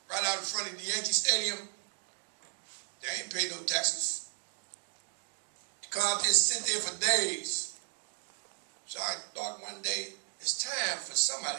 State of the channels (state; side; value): silent; left; 55 dB below the other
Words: right out in front of the Yankee Stadium. They ain't pay no taxes. Come out there and sit there for days. So I thought one day, it's time for